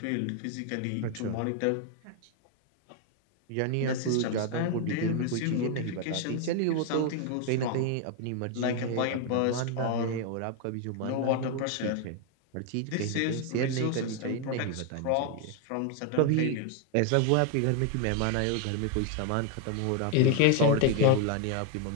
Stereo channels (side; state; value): both; different; correlation 0.01